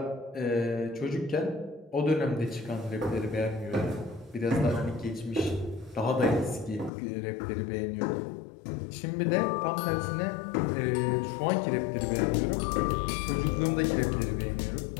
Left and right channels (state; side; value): drops out; right; at 6.9 s